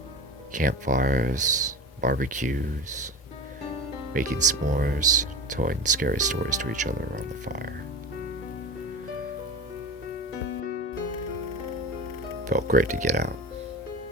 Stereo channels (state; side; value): normal; both; correlation 0.31